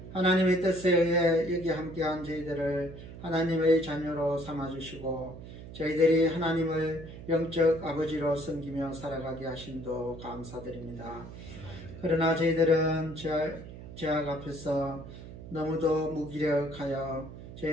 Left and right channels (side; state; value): right; noise; hum, 13 dB below the sound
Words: 하나님의 뜻에 의해 여기 함께한 저희들을 하나님의 자녀로 삼아주시고 저희들이 하나님을 영적 아버지로 섬기며 살아가게 하심도 감사드립니다. 그러나 저희들은 죄악 앞에서 너무도 무기력하여